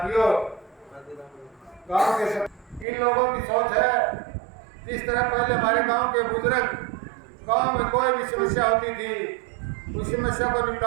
गांव के इन लोगों की सोच है जिस तरह पहले हमारे गांव के बुजुर्ग गांव में कोई भी समस्या होती थी, उस समस्या को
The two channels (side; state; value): left; drops out; at 2.9 s